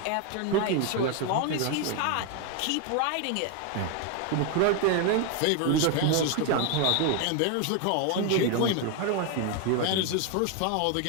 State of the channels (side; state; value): both; different; correlation 0.01